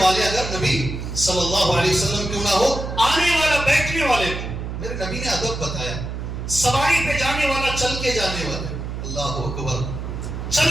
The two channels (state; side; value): noise; right; hum, 6 dB below the sound